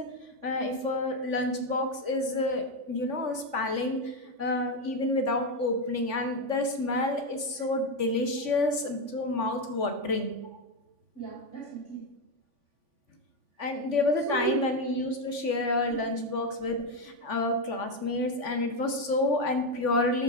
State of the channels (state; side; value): late; left; 3.5 ms